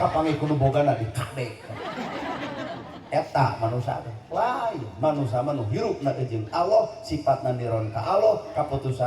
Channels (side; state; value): both; identical; correlation 1.00